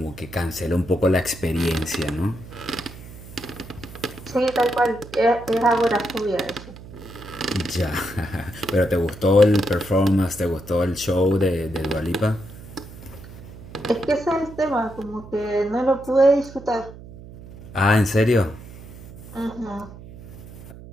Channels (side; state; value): right; noise; hum, 16 dB below the sound